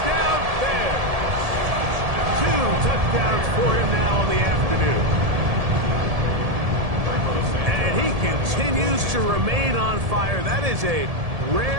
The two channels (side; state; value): left; late; 1.7 ms